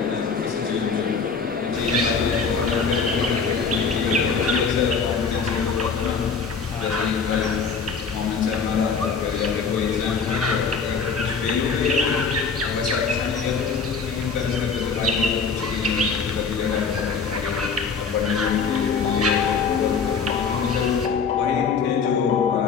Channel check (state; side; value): quieter; right; 5.4 dB